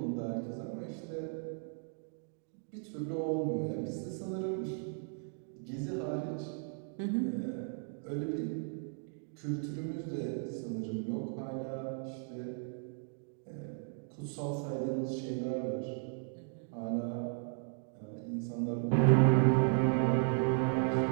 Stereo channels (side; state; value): left; silent; 54 dB below the other